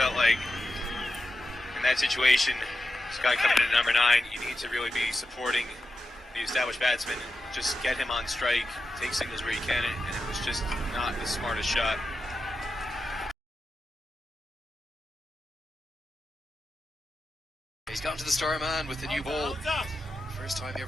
like in that situation, this guy coming in at number 9, you need to really be supporting the established batsman, just get him on strike, take singles where you can, and it was just not the smartest shot. He's gone to the star man with the new ball. First time he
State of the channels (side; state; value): both; normal; correlation 0.90